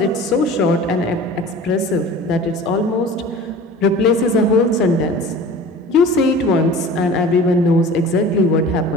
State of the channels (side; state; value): both; normal; correlation 0.40